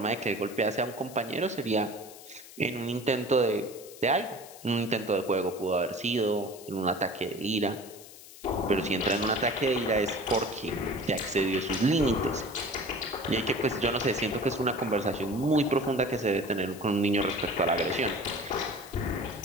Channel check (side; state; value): left; noise; hiss, 18 dB below the sound